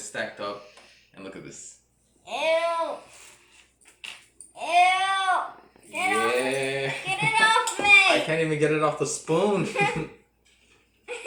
stacked up. And look at this. Ew. Ew. Get it off me. I can't even get it off the spoon.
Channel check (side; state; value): both; identical; correlation 1.00